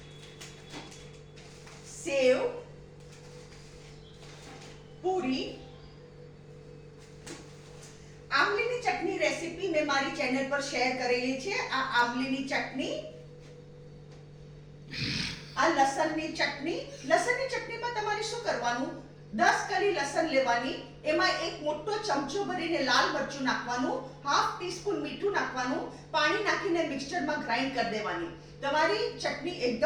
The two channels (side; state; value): both; identical; correlation 1.00